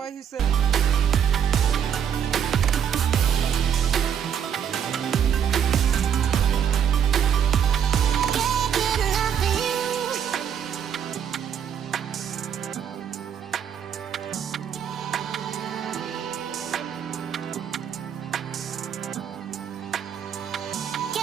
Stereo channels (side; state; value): left; quieter; 8.3 dB